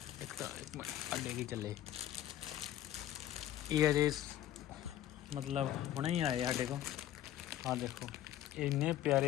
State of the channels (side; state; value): right; quieter; 12.5 dB